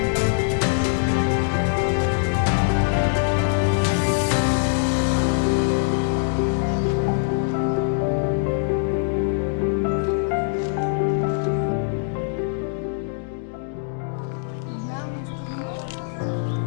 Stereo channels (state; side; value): silent; right; digital silence